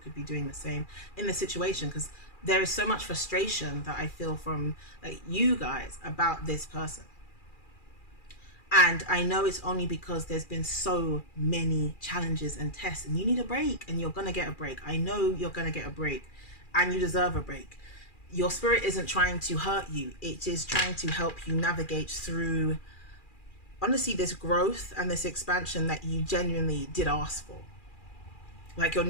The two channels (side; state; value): right; late; 2.4 ms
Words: be doing the same in the situation. Because there is so much frustration that I feel from like you guys about this person. And I know it's only because there's been so many challenges and tests, and you need a break, and you're going to get a break. I know you're going to get a break, and you deserve a break. Your spirit isn't trying to hurt you. It is trying to help you navigate through, honestly, this growth and this expansion that you genuinely did ask for. Like, you're